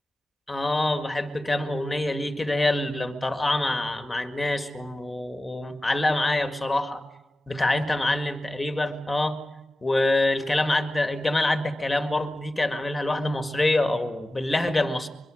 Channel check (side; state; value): both; normal; correlation 0.95